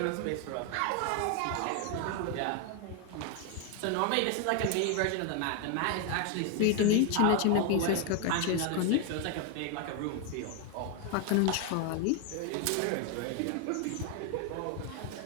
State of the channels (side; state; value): both; different; correlation 0.01